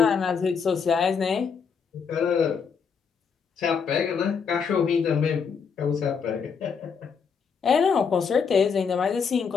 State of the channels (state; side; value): quieter; right; 6.1 dB